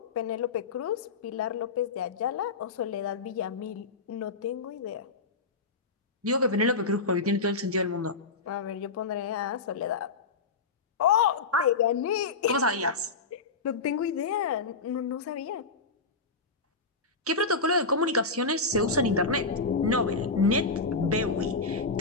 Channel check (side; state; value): right; quieter; 4.1 dB